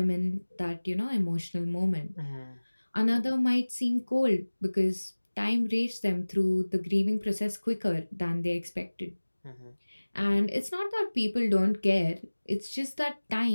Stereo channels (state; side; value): inverted; both; correlation -1.00